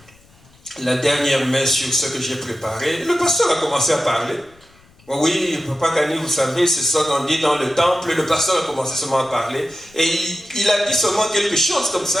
la dernière main sur ce que j'ai préparé. Le pasteur a commencé à parler. Oui, Papa Kani, vous savez, c'est ça qu'on dit dans le temple. Le pasteur a commencé seulement à parler. Et il a dit seulement quelque chose comme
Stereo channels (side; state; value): left; noise; rumble, 29 dB below the sound